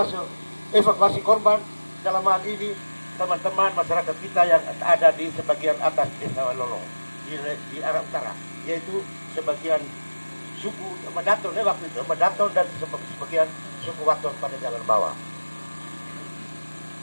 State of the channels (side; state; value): both; inverted; correlation -1.00